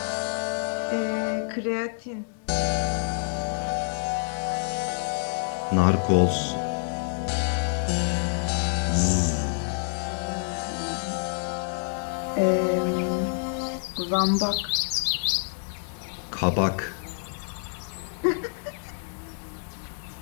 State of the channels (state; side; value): silent; right; digital silence